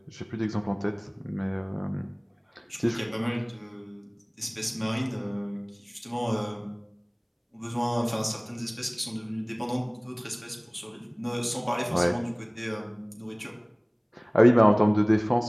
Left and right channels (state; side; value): identical; both; correlation 1.00